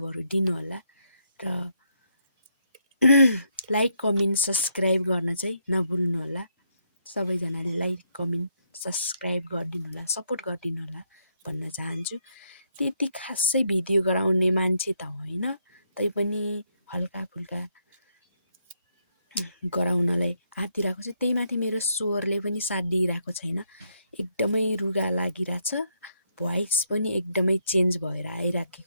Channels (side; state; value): both; inverted; correlation -0.76